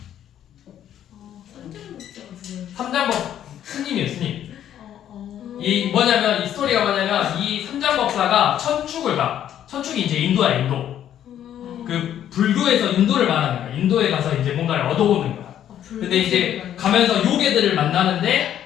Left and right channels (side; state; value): right; quieter; 10.7 dB